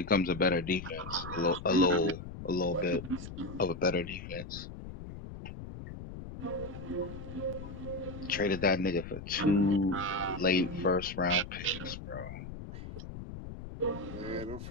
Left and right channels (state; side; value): noise; left; rumble, 11 dB below the sound